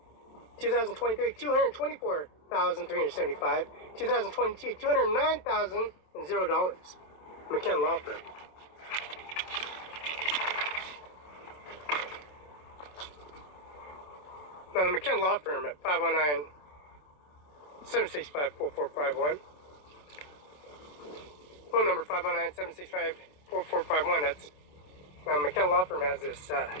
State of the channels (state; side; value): late; right; 27 ms